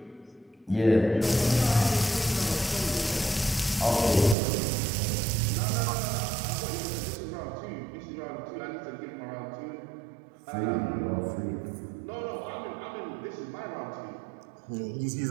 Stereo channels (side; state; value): left; drops out; at 4.4 s